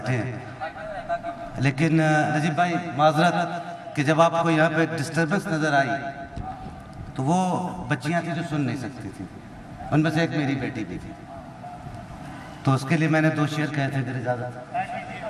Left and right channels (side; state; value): both; identical; correlation 1.00